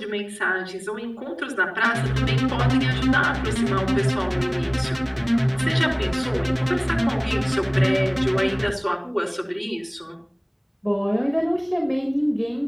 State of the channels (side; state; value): both; identical; correlation 1.00